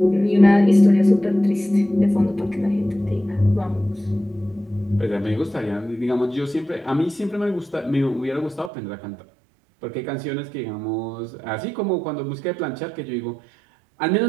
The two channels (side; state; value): left; drops out; at 8.7 s